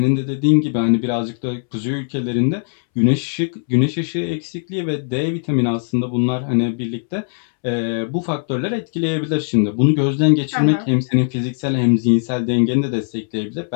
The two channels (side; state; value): right; silent; 66 dB below the other